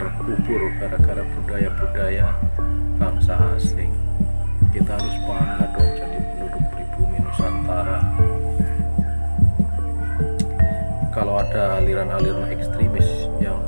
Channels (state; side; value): inverted; both; correlation -1.00